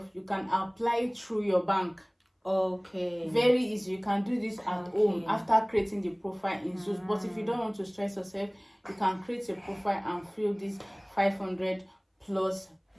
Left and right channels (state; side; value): identical; both; correlation 1.00